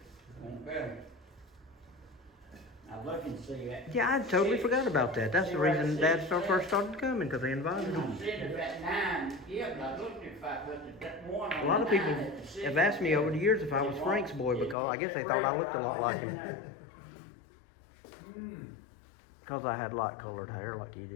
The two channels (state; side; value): drops out; right; at 14.8 s